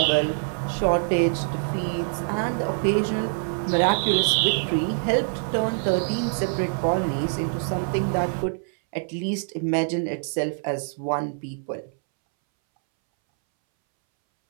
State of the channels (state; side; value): silent; left; 62 dB below the other